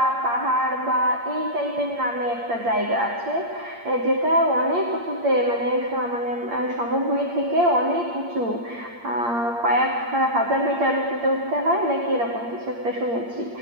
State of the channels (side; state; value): left; late; 8.6 ms